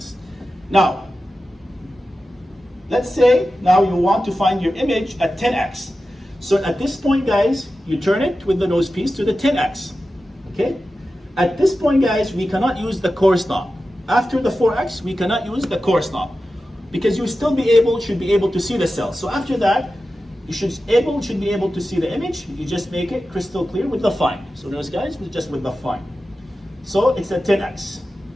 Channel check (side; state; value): both; normal; correlation 0.93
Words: Now, let's say now you want to find your image at 10x. So at this point, guys, you turn it with the nose piece to the 10x. Okay? At this point, guys, we cannot use the coarse knob. After the 4x, we cannot use the coarse knob, because you still should be able to see the cells. So after that, you should be able to see the image. You just make it crystal clear with the fine. So notice, guys, just with the fine. So it's a 10x.